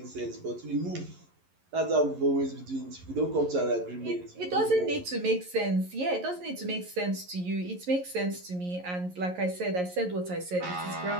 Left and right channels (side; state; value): left; late; 11 ms